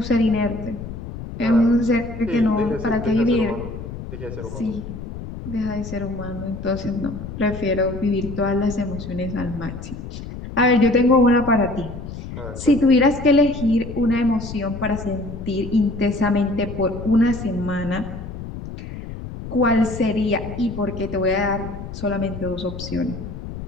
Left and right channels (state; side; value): noise; left; rumble, 10 dB below the sound